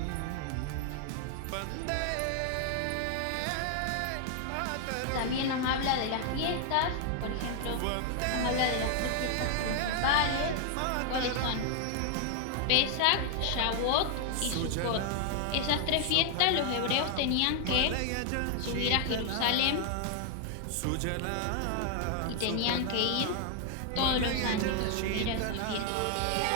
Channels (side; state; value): both; different; correlation 0.00